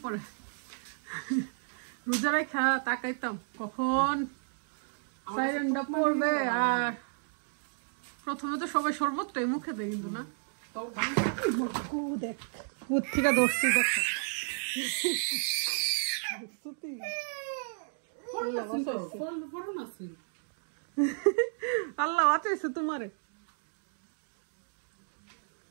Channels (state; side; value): silent; left; digital silence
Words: পড়ে। রোজা রেখা তাকাইতাম কখন সাইরেনটা পড়বে, আর প্রথমে তো সবাই শরবতটাই মুখে দেয়, কিন্তু না দেখ থেকে ধরছি। দেখো আল্লাহ বাঁচাইছে তোমারে,